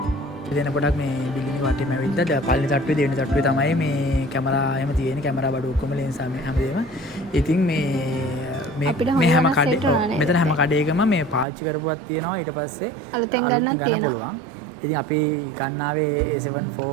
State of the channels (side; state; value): left; drops out; at 11.5 s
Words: දෙන පොඩක් මේ බිල්ඩින් එක වටේම ඇවිල්ලා පළවෙනි තට්ටුවේ දෙවෙනි තට්ටුවේ තමයි මේ කැමරා එහෙම තියෙන්නේ කැමරා බඩු ඔක්කොම ලෙන්ස් හැමදේම. ඉතින් මේ හැම කඩේ මෙතන හැම කඩේකම මේ පාවිච්චි කරපුවක් තියෙනවා. ඊට පස්සේ අලුතෙන් ගන්න පුළුවන්. ඉතින් අපි ගන්නාවේ A7